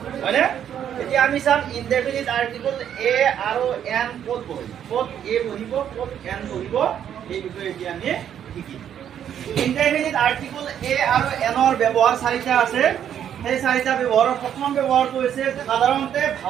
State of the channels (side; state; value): left; quieter; 9.5 dB